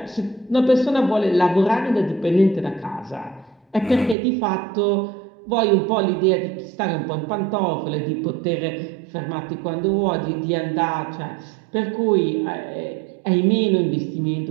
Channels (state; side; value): drops out; left; at 4.2 s